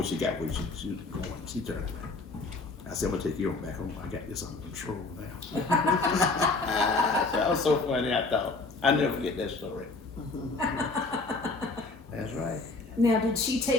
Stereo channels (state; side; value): quieter; right; 3.5 dB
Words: she got where she was going, she turned back. I said, I'm going to take you back home. I got this under control now. That was so funny, I thought. I'll never forget that story. That's right. Now, did she